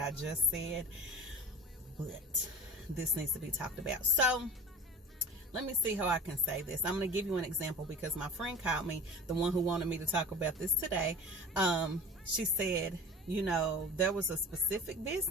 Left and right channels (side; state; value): both; normal; correlation 0.37